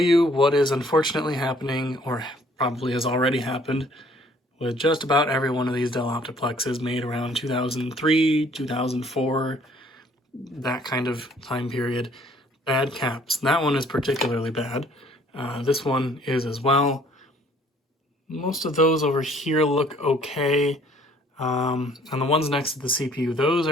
what is unfortunately happening, or probably has already happened, with just about every one of these Dell Optiplexes made around 2003, 2004, that kind of time period. Bad caps. That one is particularly bad. This one is as well. Most of those over here look okay. And the ones next to the CPU, those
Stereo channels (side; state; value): both; normal; correlation 0.59